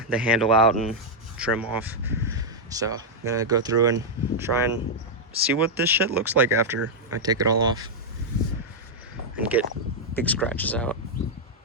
handle out and trim off. So I'm gonna go through and try and see what this shit looks like after I take it all off and get big scratches out.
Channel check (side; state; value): both; normal; correlation -0.03